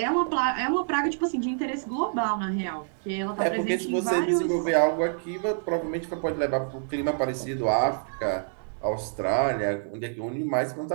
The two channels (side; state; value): left; silent; digital silence